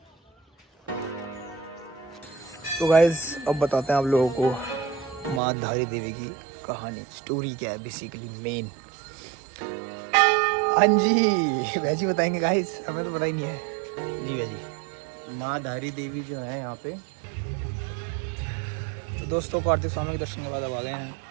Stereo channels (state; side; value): drops out; left; at 5.4 s